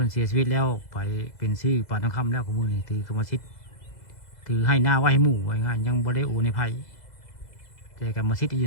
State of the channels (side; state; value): right; late; 2.0 ms